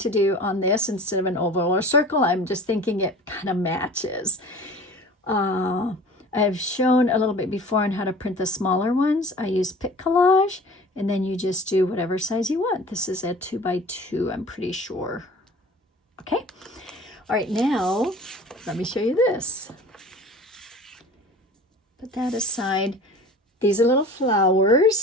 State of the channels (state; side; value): normal; both; correlation 0.42